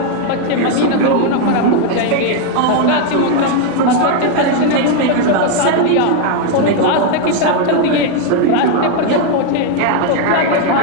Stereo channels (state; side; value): different; both; correlation 0.01